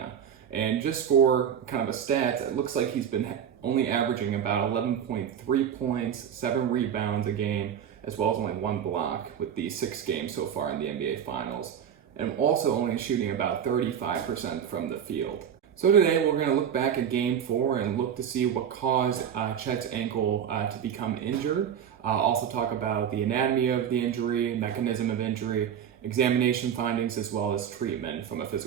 And just for kind of a stat, it looks like he's been only averaging about 11.3 points, 7 rebounds a game, as well as only 1 block with the 6 games so far in the NBA Finals, and also only shooting about 35% from the field. So today we're going to look back at Game 4 and look to see what caused Chet's ankle to become injured. Also talk about the anatomy of the injury, mechanism of injury, examination findings, as well as treatment from a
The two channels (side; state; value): left; quieter; 8.6 dB